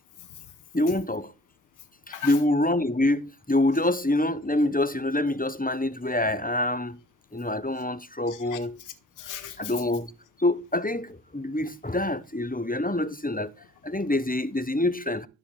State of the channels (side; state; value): both; normal; correlation 0.52